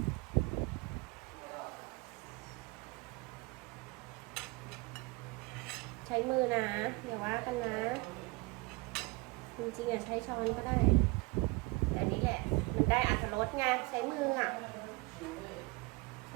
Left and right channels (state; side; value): quieter; left; 24.8 dB